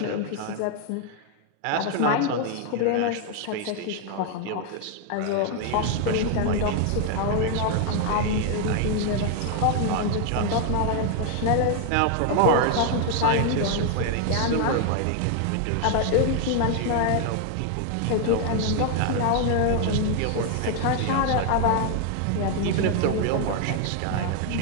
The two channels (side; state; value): both; different; correlation 0.00